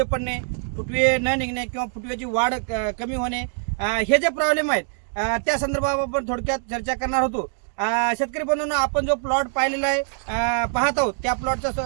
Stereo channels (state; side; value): silent; left; 63 dB below the other